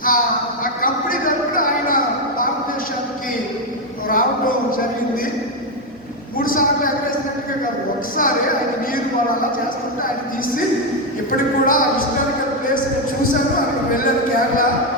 ఆ కంపెనీ తరపున ఆయన భారతదేశానికి రావడం జరిగింది. 3 సార్లు ఎగరేసినట్టుగా కాదు, ఒకసారి ఆయన నీరు వాళ్ళు అలా చేస్తుంటే ఆయన తీసి ఇప్పటికి కూడా హిస్టారికల్ ప్లేస్ నేను చూశాను. అక్కడికి వెళ్ళాను, కేరళ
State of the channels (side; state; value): both; normal; correlation 0.06